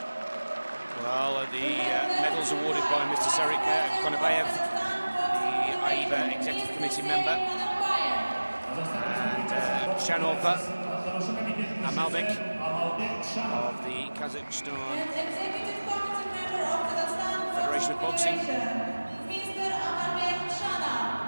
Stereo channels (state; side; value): inverted; both; correlation -1.00